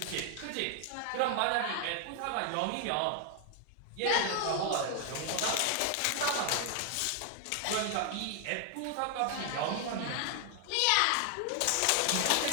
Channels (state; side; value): different; both; correlation 0.00